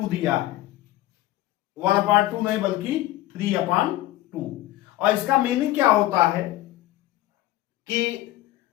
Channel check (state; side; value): quieter; right; 15.8 dB